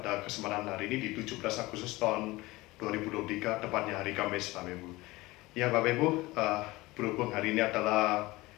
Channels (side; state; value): right; quieter; 20.4 dB